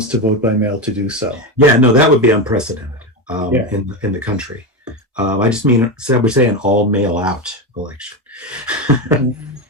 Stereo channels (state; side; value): normal; both; correlation 0.16